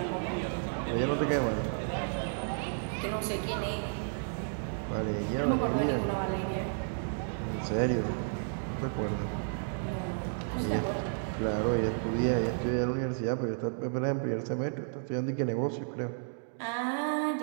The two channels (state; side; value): silent; left; digital silence